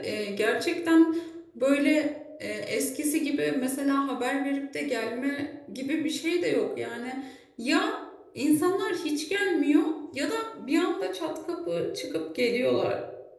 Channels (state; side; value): identical; both; correlation 1.00